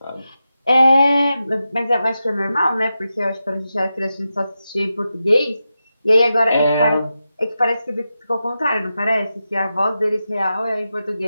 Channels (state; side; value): inverted; both; correlation -0.90